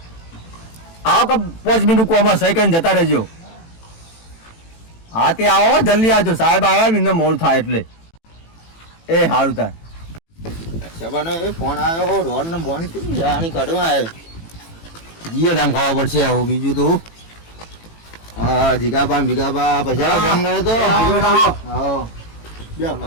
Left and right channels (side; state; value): right; late; 18 ms